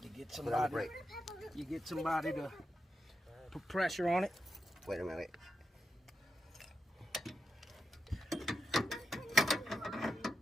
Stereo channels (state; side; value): normal; both; correlation 0.86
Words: You get Put on the somebody. brake. You get somebody to put pressure on it. Wait a minute.